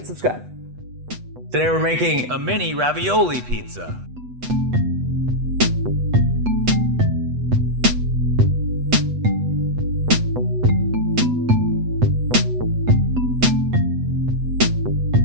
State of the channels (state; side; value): late; left; 8.1 ms